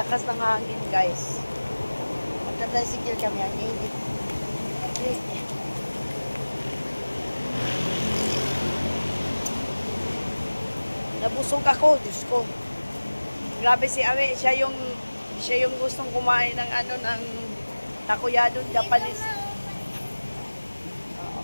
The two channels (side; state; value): both; inverted; correlation -1.00